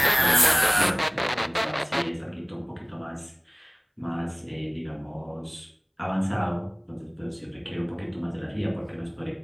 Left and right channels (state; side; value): identical; both; correlation 1.00